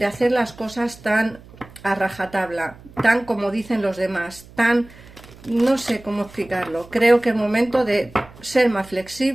hacer las cosas tan a rajatabla, tan como dicen los demás, tan, no sé cómo explicarlo. Creo que es momento de ser más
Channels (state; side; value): noise; right; hum, 22 dB below the sound